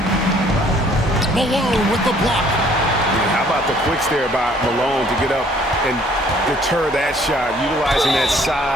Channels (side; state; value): both; normal; correlation 0.59